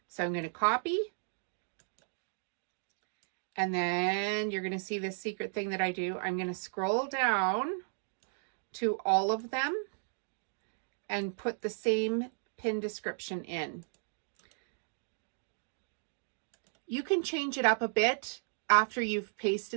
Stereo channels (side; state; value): left; silent; digital silence